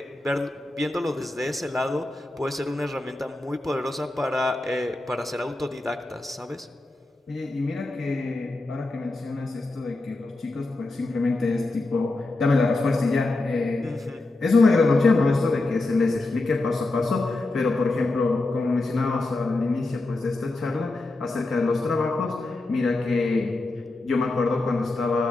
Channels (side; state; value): right; quieter; 3.0 dB